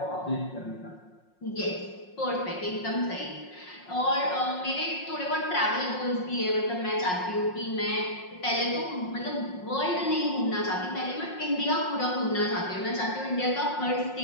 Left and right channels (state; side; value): late; right; 5.5 ms